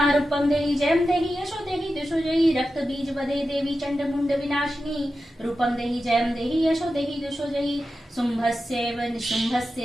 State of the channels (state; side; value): normal; both; correlation 0.91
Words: रूपम देहि जयम देहि यशो देहि दुषो जहि। रक्त बीज वदे देवी चंड मुंड विनाशिनी रूपम देहि जयम देहि यशो देहि दुषो जहि। शुंभस्यैव